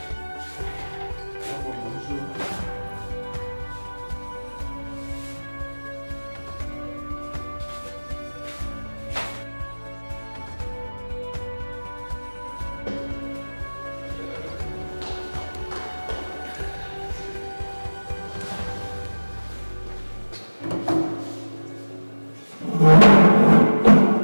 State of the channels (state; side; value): inverted; both; correlation -1.00